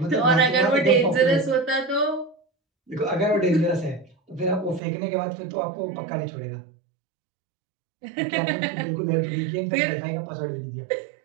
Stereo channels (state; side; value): drops out; left; at 4.8 s